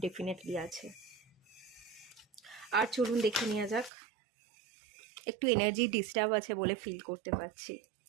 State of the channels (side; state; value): left; drops out; at 3.9 s